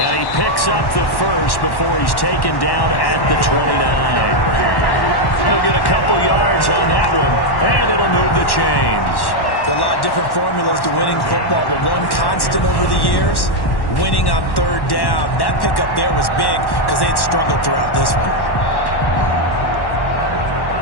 he picks up the first before he's taken down at the 29. He'll get a couple yards on that one, and it'll move the chains. There are a lot of different formulas to winning football, but one constant over the years, winning on 3rd down. That pickup there was big because they had struggled throughout this one.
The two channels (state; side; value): late; right; 1.1 ms